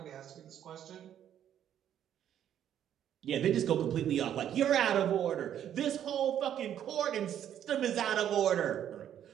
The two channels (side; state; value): left; quieter; 10.2 dB